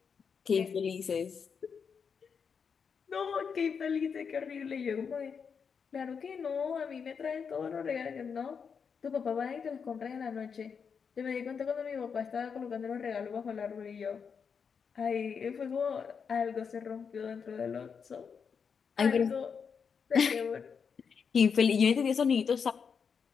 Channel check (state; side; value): quieter; right; 6.3 dB